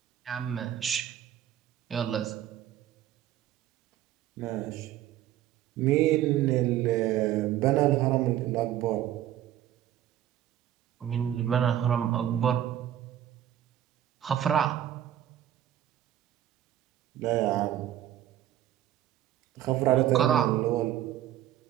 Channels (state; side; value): quieter; left; 12.0 dB